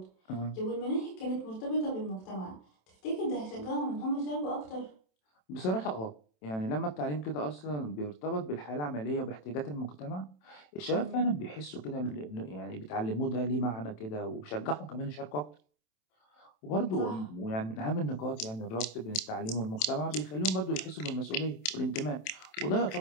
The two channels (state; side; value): late; right; 27 ms